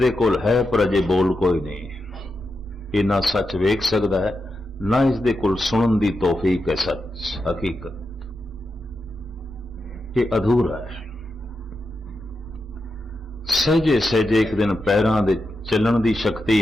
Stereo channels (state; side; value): normal; both; correlation 0.87